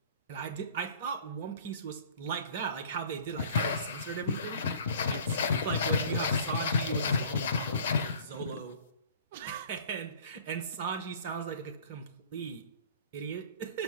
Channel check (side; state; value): both; inverted; correlation -0.47